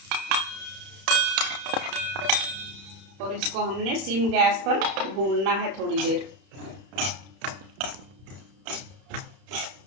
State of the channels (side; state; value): left; late; 31 ms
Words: और इसको हमने सिम गैस पर भूनना है थोड़ी देर।